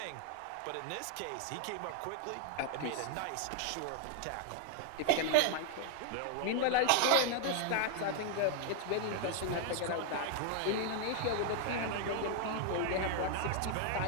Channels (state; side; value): different; both; correlation 0.00